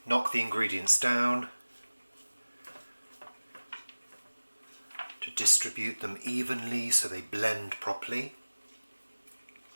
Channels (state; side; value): inverted; both; correlation -1.00